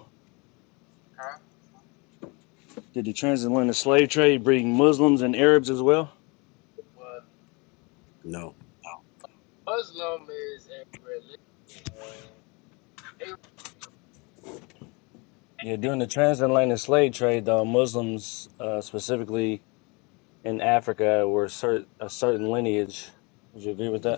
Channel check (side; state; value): right; quieter; 28.8 dB